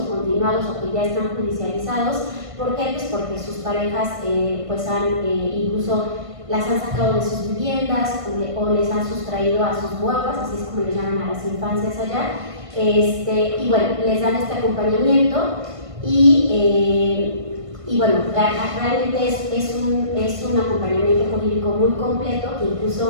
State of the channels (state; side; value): late; left; 1.5 ms